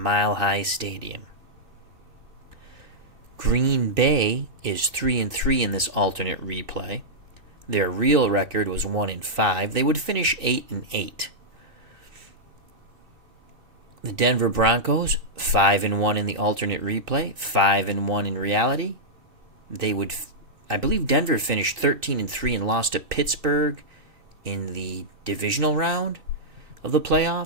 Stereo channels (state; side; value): late; left; 2.6 ms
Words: Mile High Stadium. Green Bay is 3-3 in this alternate replay. Their real record was 1-5. They would finish 8-8. The Denver Broncos 5-1 in the alternate replay, 5-1 in reality. I believe Denver finished 13-3 and lost to Pittsburgh in the divisional round of the